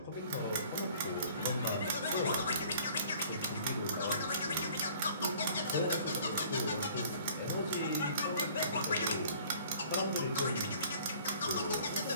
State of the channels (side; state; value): both; inverted; correlation -0.53